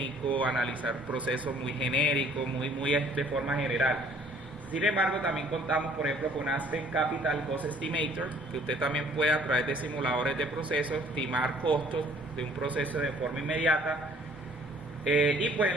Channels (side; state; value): both; normal; correlation 0.57